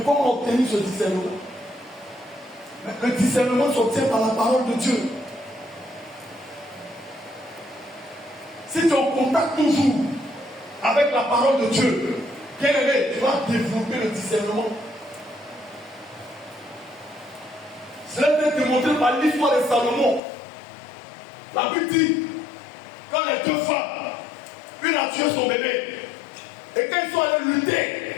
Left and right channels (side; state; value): right; drops out; at 20.2 s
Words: comment obtenir ce discernement? Le discernement s'obtient par la parole de Dieu. Si tu es en contact toujours avec la parole de Dieu, bien aimé, tu vas développer le discernement. Cela est démontré par l'histoire de Salomon. La Bible dit, quand les 2 femmes, une a tué son bébé, et quand ils sont allés lutter,